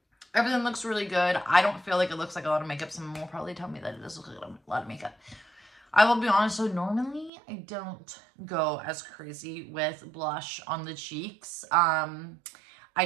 everything looks really good. I don't feel like it looks like a lot of makeup. Someone will probably tell me that it does look like a lot of makeup. I will be honest, so normally I don't go as crazy with blush on the cheeks.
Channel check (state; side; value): drops out; left; at 7.3 s